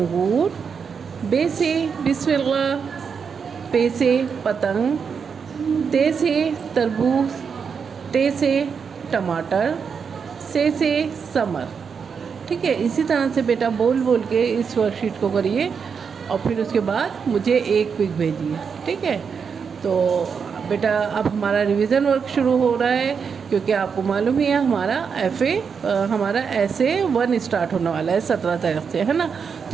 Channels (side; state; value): left; quieter; 6.2 dB